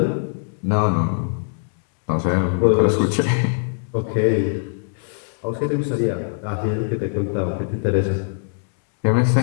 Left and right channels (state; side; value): silent; right; digital silence